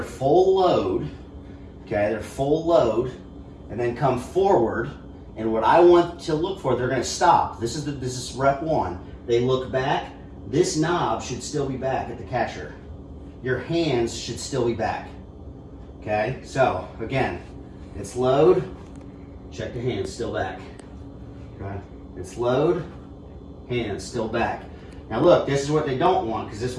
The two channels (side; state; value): both; identical; correlation 1.00